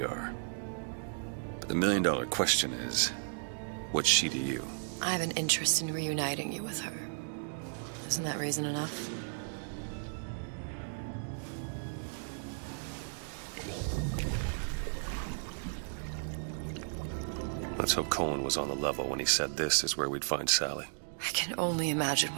are. But the million-dollar question is, what's she to you? I have an interest in reuniting you with her. Isn't that reason enough? Let's hope Cohen was on the level when he said this is where we'd find Sally. I can only imagine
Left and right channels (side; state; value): left; silent; digital silence